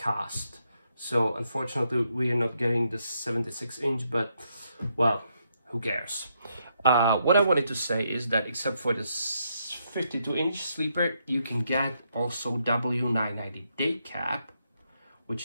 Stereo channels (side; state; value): both; inverted; correlation -0.78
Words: So unfortunately we are not getting the 76-inch, but well, who cares? What I wanted to say is that except for this 52-inch sleeper, you can get also W990 day cab,